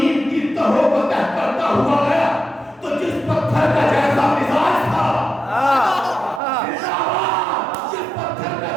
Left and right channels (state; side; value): drops out; left; at 6.4 s